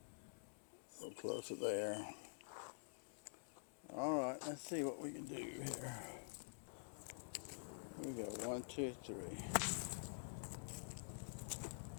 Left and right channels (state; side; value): silent; right; digital silence